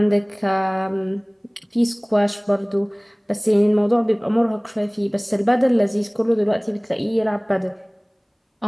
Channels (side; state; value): both; identical; correlation 1.00